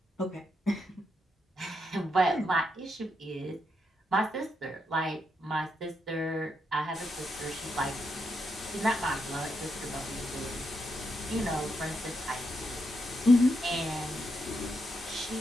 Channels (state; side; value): normal; both; correlation 0.81